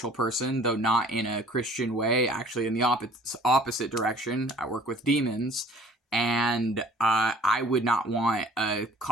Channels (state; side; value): normal; both; correlation 0.52